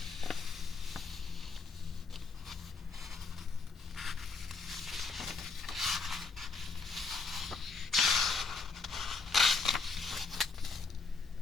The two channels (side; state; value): right; quieter; 4.4 dB